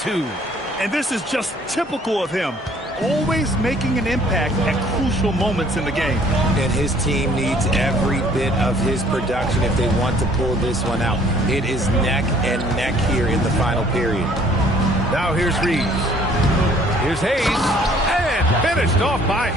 And this is just typical of him. Always making an impact at crucial moments in the game. And his team needs every bit of his production if they want to pull this one out. It is neck and neck here in the final period. Now here's Reeves. Here's Hayes. And finished off by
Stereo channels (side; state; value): both; normal; correlation 0.58